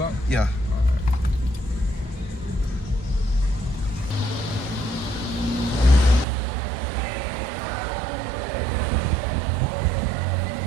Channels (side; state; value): left; drops out; at 6.2 s